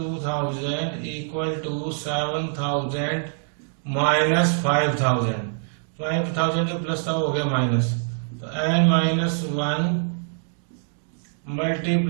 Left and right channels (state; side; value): silent; left; 62 dB below the other